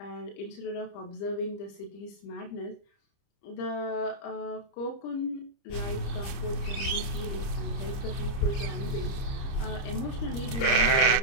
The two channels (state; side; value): late; right; 30 ms